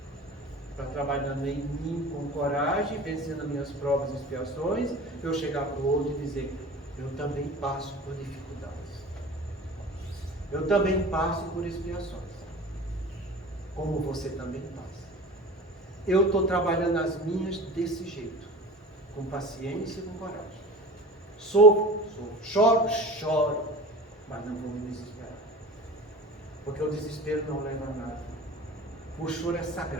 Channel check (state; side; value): normal; both; correlation 0.37